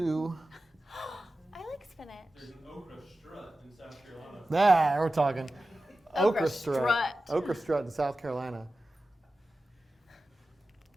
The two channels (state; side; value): normal; both; correlation 0.94